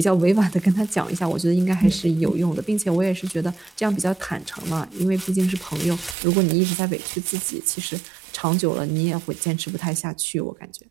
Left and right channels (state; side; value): drops out; left; at 6.2 s